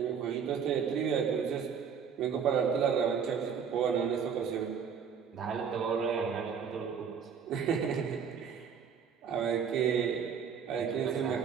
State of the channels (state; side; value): quieter; left; 7.0 dB